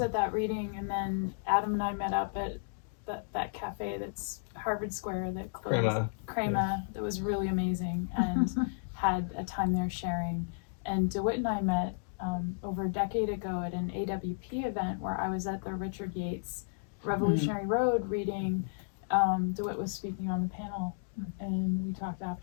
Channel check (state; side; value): silent; right; digital silence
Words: at that reading, and then Adam and I met up at that cafe that's Harvard Square that closed. Crema, that was really amazing, and had a time there sharing. And DeWitt and I met over a decade ago at an AWP event where I was at the Richard Yates Revolutionary Road reading. DeWitt was speaking on the panel, and we talked